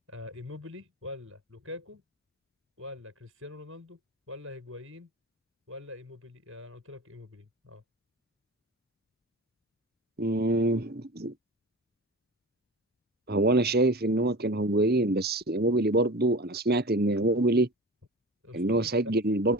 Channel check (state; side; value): normal; both; correlation 0.33